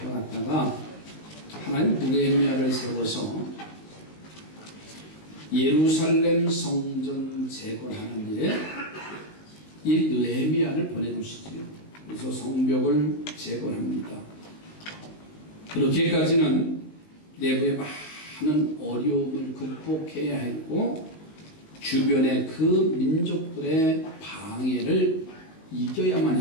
하나님 느헤미야를 세워서 예루살렘 성전 재건하는 일에 이 느헤미야를 보내주시지요. 그래서 성벽을 재건합니다. 그렇게까지는 내부에 많은 어려움을 극복해야 했고 주변의 그 민족들의 방해를 이겨야만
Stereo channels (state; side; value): late; right; 19 ms